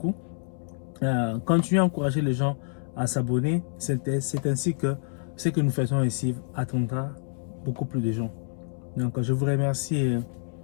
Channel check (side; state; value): right; silent; 60 dB below the other